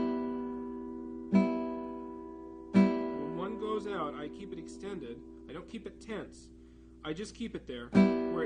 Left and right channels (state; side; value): identical; both; correlation 1.00